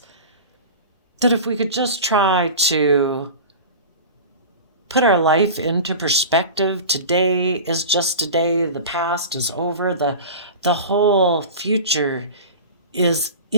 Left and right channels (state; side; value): inverted; both; correlation -0.33